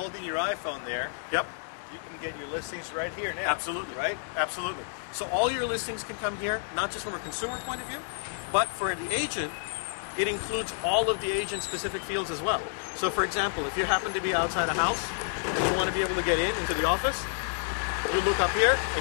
your iPhone there. Yep. You can get your listings right here now. Absolutely. Right? Absolutely. So all your listings can come here, not just from a consumer point of view, but for the agent, it includes all of the agent-specific fields as well. So, for example, if you happen to be outside a house and you want to be able to get into the office, you look up here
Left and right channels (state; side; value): silent; right; 58 dB below the other